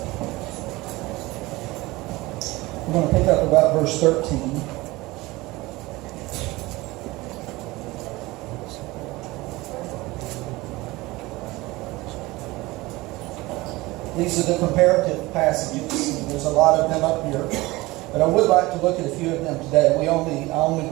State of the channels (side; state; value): left; quieter; 20.7 dB